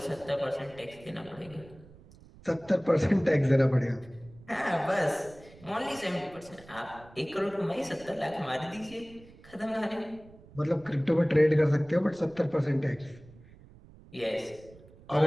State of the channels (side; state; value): right; noise; rumble, 22 dB below the sound